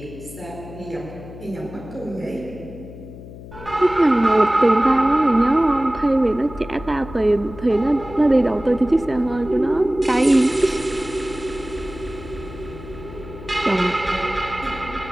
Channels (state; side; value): noise; left; hum, 15 dB below the sound